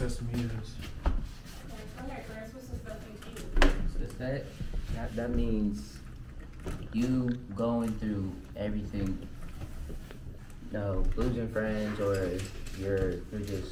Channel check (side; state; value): both; identical; correlation 1.00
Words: to me is. Success, that means you going through everything. No, losing friends, or you're